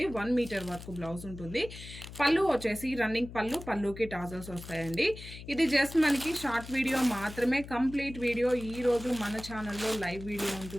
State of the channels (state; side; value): noise; left; hum, 13 dB below the sound